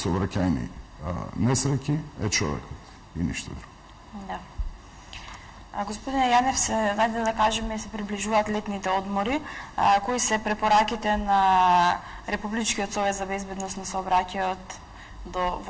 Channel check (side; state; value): both; identical; correlation 1.00